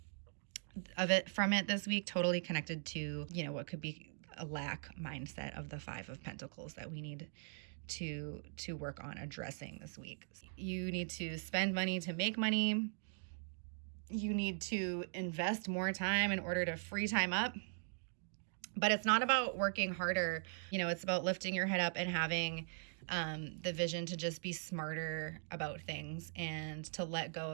from it this week, totally connected to, what could be a lack mindset of the 5 of Pentacles that we need to work on addressing this week. You need to spend money to make money. You need to invest more time in order to free time up. But it's not about working harder. It's about lifting your head up and having the vision to just be smarter about things, and to let go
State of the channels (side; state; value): left; silent; digital silence